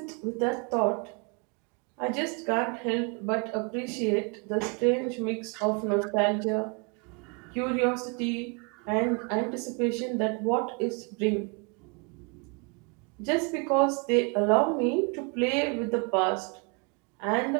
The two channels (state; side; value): quieter; left; 34.8 dB